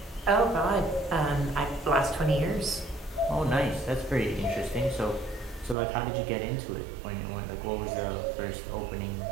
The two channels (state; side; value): drops out; left; at 5.8 s